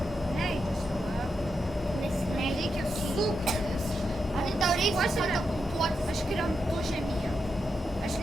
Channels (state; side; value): normal; both; correlation 0.85